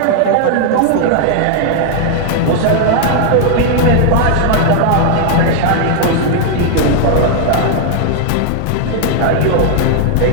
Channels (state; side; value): different; both; correlation 0.00